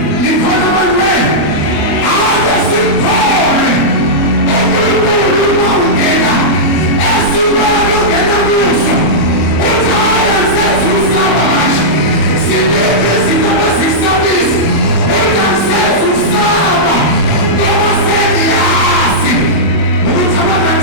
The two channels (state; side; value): late; right; 25 ms